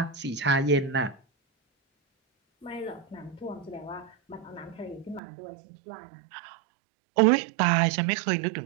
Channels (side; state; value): left; drops out; at 5.2 s